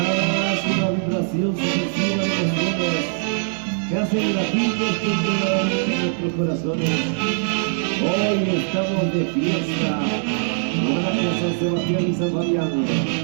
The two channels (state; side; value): silent; left; 64 dB below the other